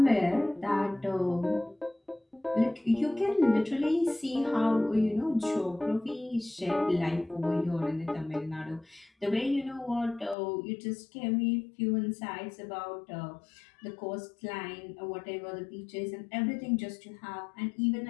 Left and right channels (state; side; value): drops out; right; at 10.4 s